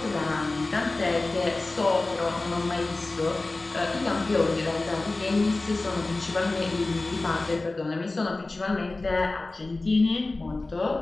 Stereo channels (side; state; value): right; quieter; 3.1 dB